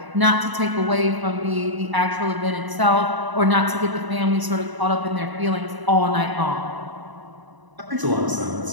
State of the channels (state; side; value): late; left; 1.0 ms